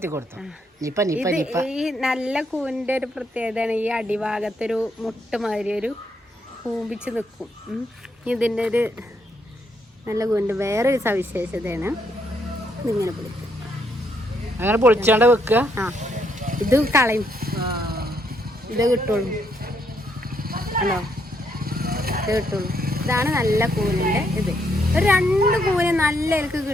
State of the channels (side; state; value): both; normal; correlation 0.75